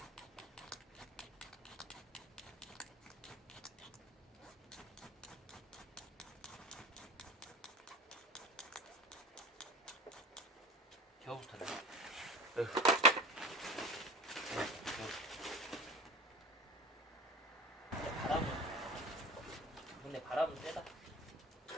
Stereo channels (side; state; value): both; normal; correlation 0.35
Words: 겨우부터네. 바람은 근데 바람은 세다.